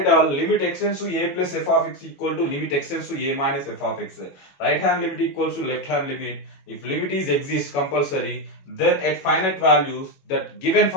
all. Limit x tends to a plus f of x equal to limit x tends to a minus f of x. Right hand limit equals to left hand limit. If limit is exist compulsory, then at finite values that given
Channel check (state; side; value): late; right; 21 ms